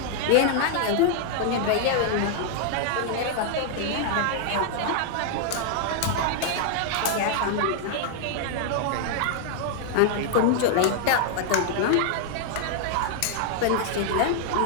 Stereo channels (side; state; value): both; different; correlation -0.01